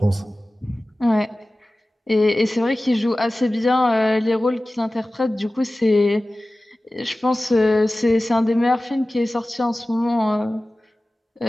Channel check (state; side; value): normal; both; correlation 0.96